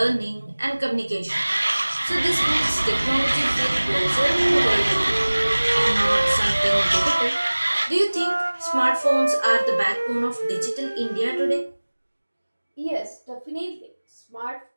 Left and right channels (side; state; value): both; inverted; correlation -1.00